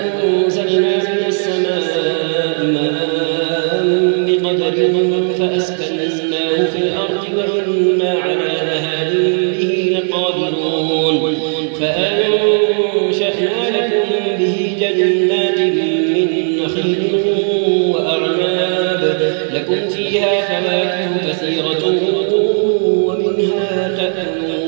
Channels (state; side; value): silent; left; 60 dB below the other